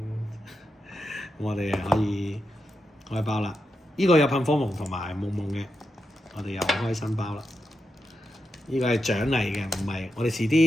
我哋可以開包啦。呢個有噴火龍同埋夢夢嘅，我哋又開新包啦。呢個係獎勵嘅，唔係我哋遲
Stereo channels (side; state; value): both; normal; correlation 0.86